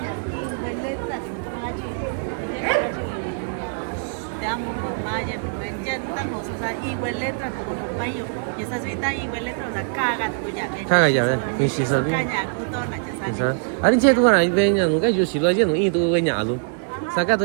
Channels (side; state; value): left; silent; digital silence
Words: nhà in bên lên là có chị. Đang mà nhà bên trên đang một số bên lên là có một bao nhiêu. Nhà xã suy ta bên lên là caga của nhà. Caga ya ve, ni si sao đi. Sao? Anh che tôi này về nhà nó cái gì lo chứ nó in tôi về nhà luôn. Sao cái